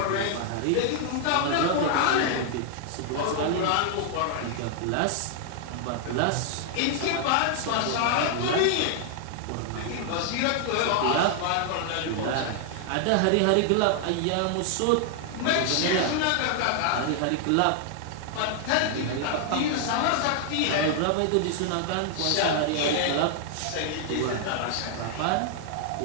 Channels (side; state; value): both; different; correlation 0.00